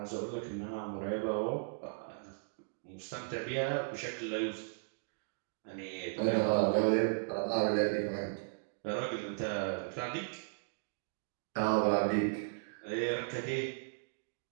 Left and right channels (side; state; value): left; silent; digital silence